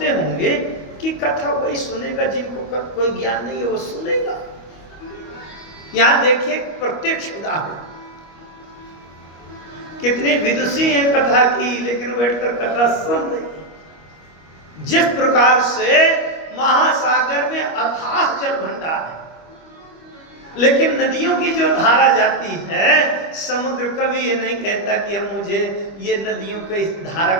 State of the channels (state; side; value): late; right; 25 ms